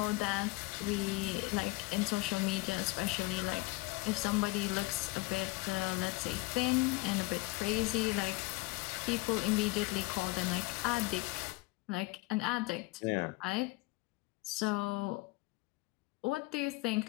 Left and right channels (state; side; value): quieter; right; 23.2 dB